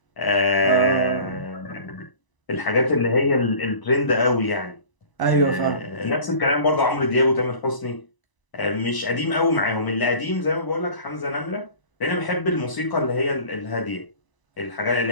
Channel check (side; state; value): right; late; 1.0 ms